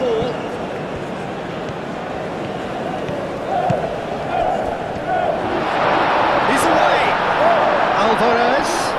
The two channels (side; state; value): both; identical; correlation 1.00